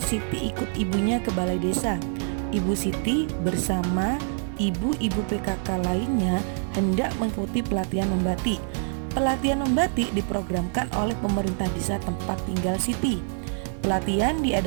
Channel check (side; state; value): left; silent; 56 dB below the other